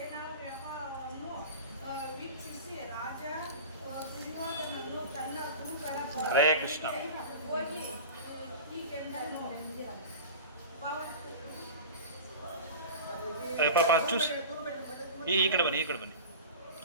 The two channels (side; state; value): both; inverted; correlation -0.32